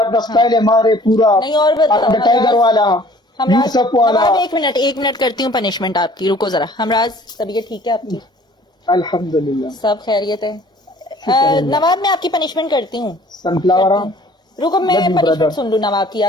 अपना स्टाइल है मारे पूरा नहीं और बताओ, टाइगर वाला यूसुफ वाला। एक मिनट करती हूँ पनिशमेंट आपकी, रुको जरा। हमराज तबीयत ठीक है आपकी? अल्हम्दुलिल्लाह सब खैरियत है। नवाब मैं आपकी पनिशमेंट करती हूँ। सनफ्लावर रुको मैं Love you, पनिशमेंट brother. सुन लूँ नवाब की,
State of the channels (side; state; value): both; normal; correlation 0.52